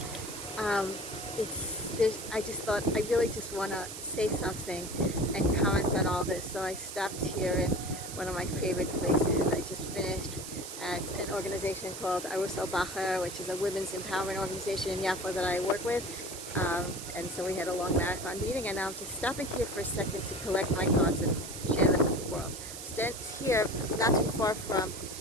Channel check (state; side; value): noise; right; hiss, 9 dB below the sound